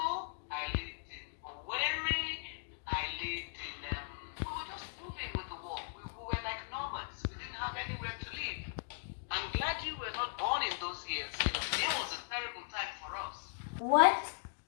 I lived in Owerri, I lived in, we were just moving with the war. We were like nomads. We didn't have anywhere to live. I'm glad you were not born in those years. It was a terrible time for us. What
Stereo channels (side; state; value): right; silent; digital silence